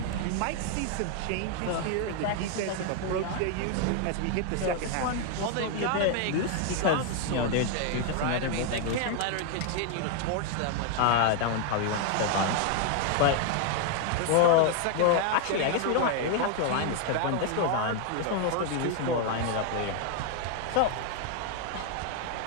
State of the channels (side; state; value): both; different; correlation 0.01